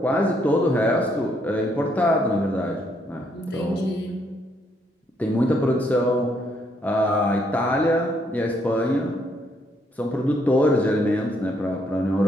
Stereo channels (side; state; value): both; normal; correlation 0.72